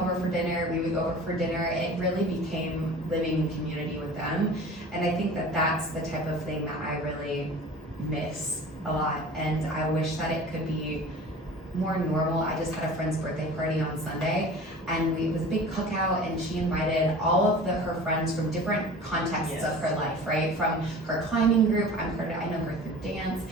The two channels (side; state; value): both; normal; correlation 0.40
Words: for dinner, we would go over for dinner. It really became living in community with them, and I think that that's the type of thing that I really miss a lot, and I wish that it could be more normal. I just had a friend's birthday party on Sunday, and it was a big cookout, and she invited all of her friends from different contexts of her life, right? From her climbing group, I know her through dance.